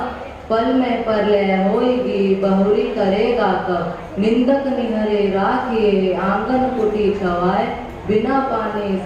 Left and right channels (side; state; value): both; identical; correlation 1.00